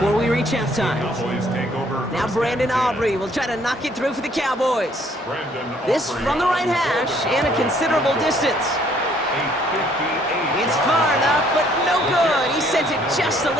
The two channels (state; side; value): normal; both; correlation 0.63